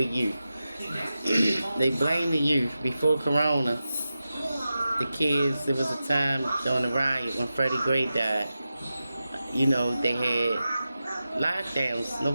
youth. They blame the youth. Before Corona, the kids, there was a time during the riot when Freddie Gray died. You know, they had lockdowns.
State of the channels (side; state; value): both; inverted; correlation -0.92